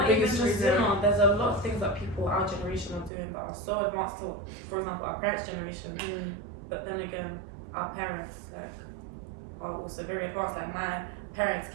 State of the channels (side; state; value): left; drops out; at 3.1 s